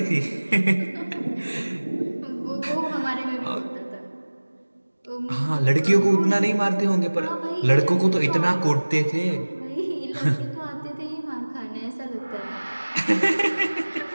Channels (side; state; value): both; inverted; correlation -1.00